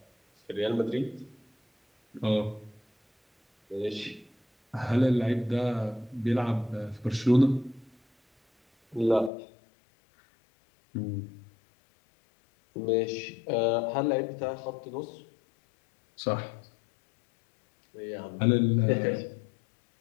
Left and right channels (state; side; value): drops out; right; at 9.3 s